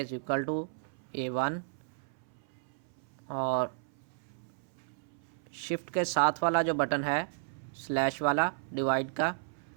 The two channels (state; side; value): silent; left; 56 dB below the other